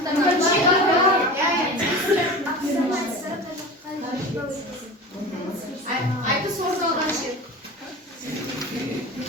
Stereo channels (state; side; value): normal; both; correlation 0.33